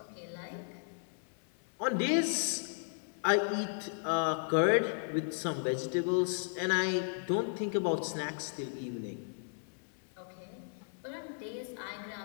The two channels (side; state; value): right; silent; 54 dB below the other